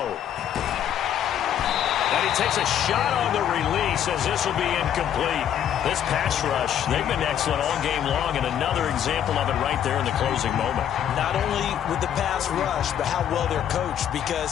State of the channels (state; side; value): quieter; right; 9.9 dB